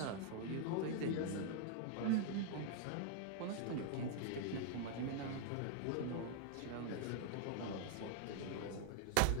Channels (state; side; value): different; both; correlation 0.00